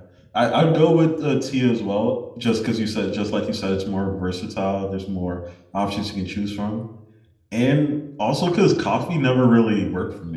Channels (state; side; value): identical; both; correlation 1.00